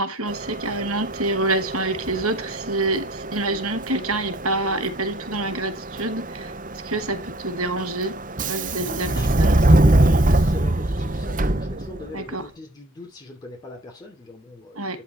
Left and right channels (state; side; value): normal; both; correlation 0.54